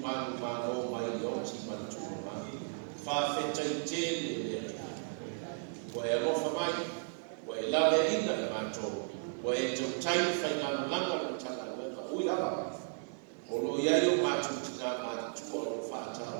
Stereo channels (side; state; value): left; silent; 54 dB below the other